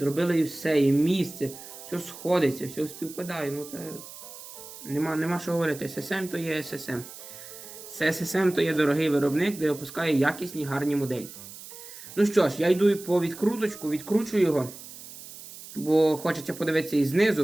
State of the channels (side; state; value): right; noise; hiss, 15 dB below the sound